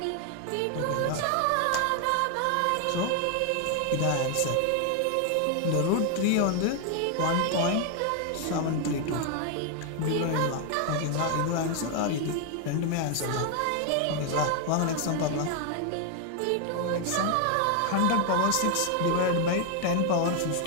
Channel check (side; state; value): both; different; correlation 0.00